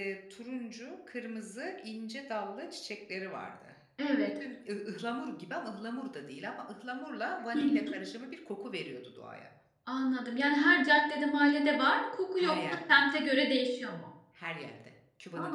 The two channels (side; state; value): both; identical; correlation 1.00